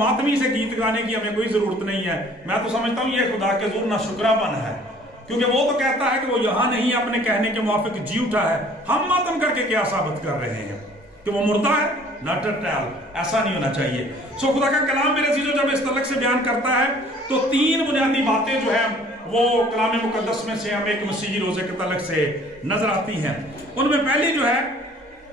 سے گیت گانے کی ہمیں کوئی ضرورت نہیں ہے. میں تو سمجھتا ہوں یہ خدا کے حضور ناشکرا پن ہے، کیونکہ وہ تو کہتا ہے کہ وہ یہاں نہیں اپنے کہنے کے موافق جی اٹھا ہے. ہم ماتم کر کے کیا ثابت کر رہے ہیں کہ وہ مردہ ہے؟ Not at all. ایسا نہیں ہونا چاہیے. سو خدا کا کلام میرے عزیزو جب اس تعلق سے بیان کرتا ہے تو 3 بنیادی باتیں جو ہیں وہ کلام مقدس میں سے ہمیں ایک مسیحی روزے کے تعلق سے نظر آتی ہیں. ان میں پہلی جو ہے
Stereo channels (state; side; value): normal; both; correlation 0.54